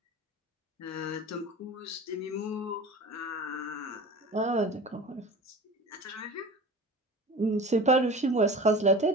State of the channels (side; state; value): both; normal; correlation 0.37